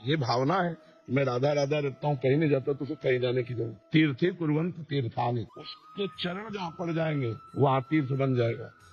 ये भावना है मैं राधा राधा रहता हूँ, कहीं नहीं जाता, तो उसे कहीं जाने की जरूरत। तीर्थे कुर्वंत तीर्थानि, उसके चरण जहाँ पड़ जाएंगे वहाँ तीर्थ बन जाएगा।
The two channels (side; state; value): both; identical; correlation 1.00